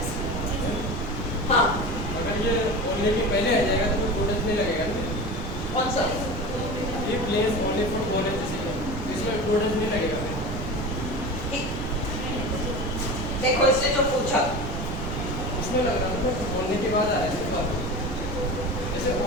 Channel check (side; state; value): right; noise; rumble, 5 dB below the sound